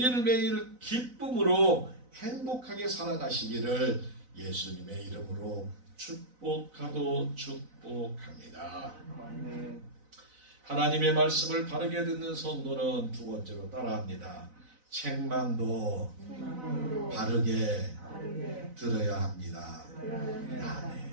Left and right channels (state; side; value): late; left; 4.0 ms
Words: 기쁨으로 행복하게 살아가시기를 예수님의 이름으로 축복하고 축복합니다. 하나님의 말씀을 바르게 듣는 성도는 두 번째로 따라합니다. 책망도 바르게 들어야 합니다.